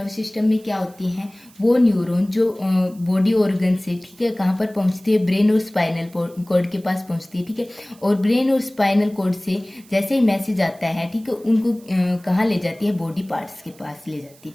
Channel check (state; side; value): noise; right; hiss, 26 dB below the sound